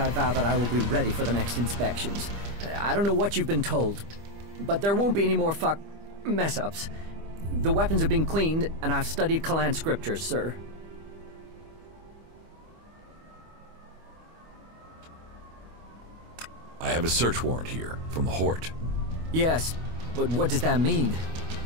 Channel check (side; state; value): left; late; 25 ms